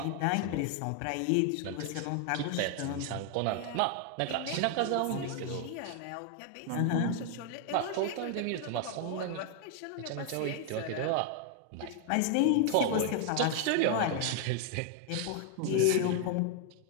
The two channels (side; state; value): both; different; correlation 0.00